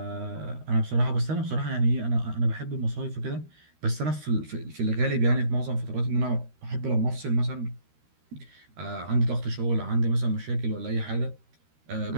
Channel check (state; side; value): late; left; 13 ms